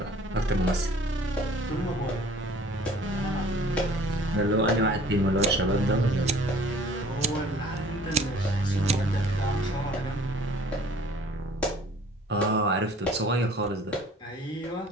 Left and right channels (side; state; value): both; normal; correlation 0.52